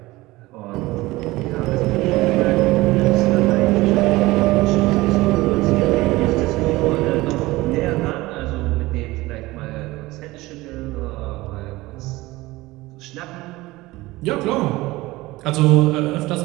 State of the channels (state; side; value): quieter; left; 19.7 dB